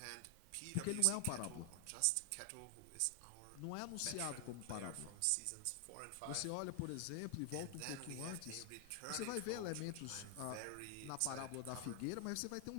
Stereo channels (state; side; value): different; both; correlation 0.00